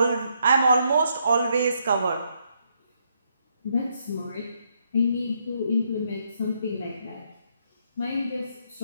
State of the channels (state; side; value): inverted; both; correlation -0.75